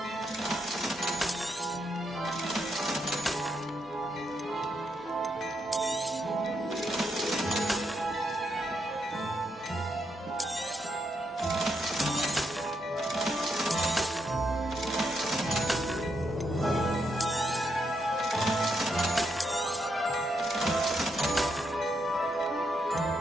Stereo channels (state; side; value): normal; both; correlation 0.79